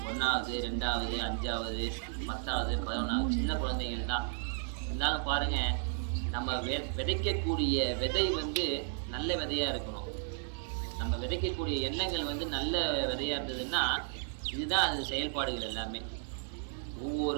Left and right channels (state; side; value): silent; left; digital silence